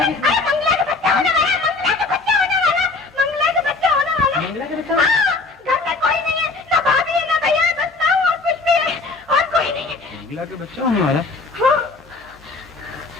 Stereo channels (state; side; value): quieter; right; 3.7 dB